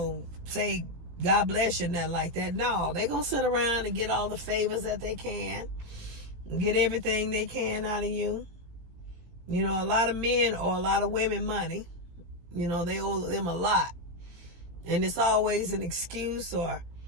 say, God bless you, nothing like that. No, they gonna sit around and get all the favors that they can, get everything they can out of you. A lot of men owe a lot of women money. They owe them a lot. And it's always an excuse or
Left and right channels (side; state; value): left; late; 18 ms